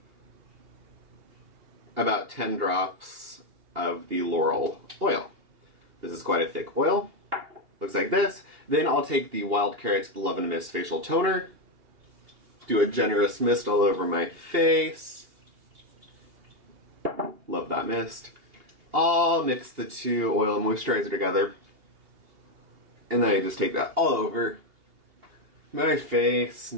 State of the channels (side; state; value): left; late; 2.8 ms